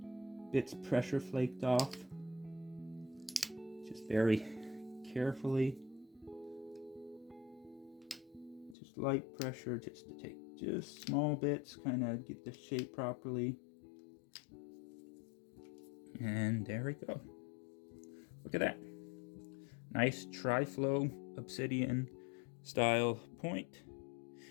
bits pressure flaked off. Just very carefully. Just light pressure, just to take just small bits, kind of get the shape properly. And there we go. Look at that. Nice Triflow Obsidian style point.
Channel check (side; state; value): right; drops out; at 8.8 s